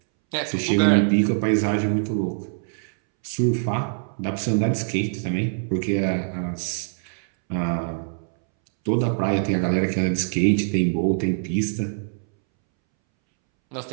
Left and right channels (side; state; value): left; silent; 63 dB below the other